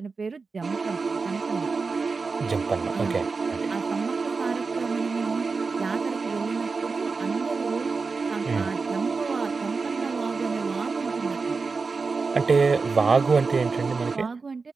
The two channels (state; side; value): quieter; left; 4.5 dB